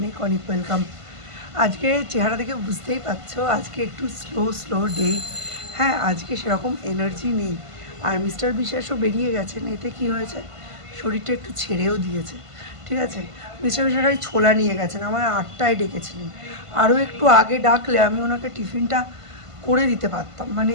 অনেক ওয়েলকাম। আজকে চেহারা দেখে বুঝতেই পারছো আজকে একটু স্লো ডে। হ্যাঁ, আজকে সেরকম এনার্জি নেই। আর মিস্টার বিশ্বাসও বেরিয়ে গেছেন, এতে কি হয়েছে, শরীরটা একটু ছেড়েও দিয়েছে। ঠিক আছে, মিস্টার বিশ্বাস ওই ছোলা নিয়ে গেছেন, আমার 8টায় ডেকেছিলেন। আরও একটু আগে ডাকলে আমি ওনাকে টিফিনটা করে দিতে পারতাম। মানে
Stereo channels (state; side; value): late; left; 1.5 ms